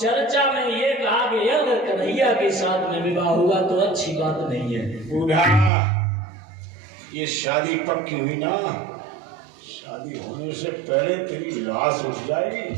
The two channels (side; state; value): left; drops out; at 5.7 s